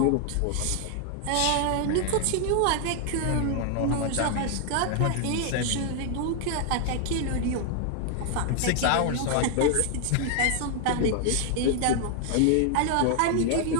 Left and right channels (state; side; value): different; both; correlation 0.00